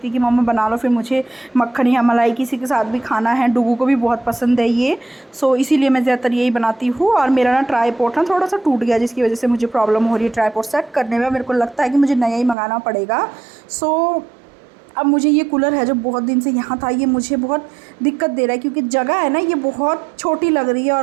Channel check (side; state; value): left; drops out; at 12.6 s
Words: है कि मम्मा बना लो, फिर मुझे मक्खन या मलाई किसी के साथ भी खाना है, डुग्गू को भी बहुत पसंद है ये। सो इसीलिए मैं ज़्यादातर यही बनाती हूँ। और मेरा ना ट्राईपॉड ना थोड़ा सा टूट गया, जिसकी वजह से मुझे प्रॉब्लम हो रही है ट्राईपॉड सेट करने में। मेरे को लगता है कि मुझे नया ही मंगाना पड़ेगा। सो अब मुझे ये कूलर है जो बहुत दिन से यहाँ था, ये मुझे बहुत दिक्कत दे रहा है, क्योंकि जगह है ना ये बहुत छोटी लग रही है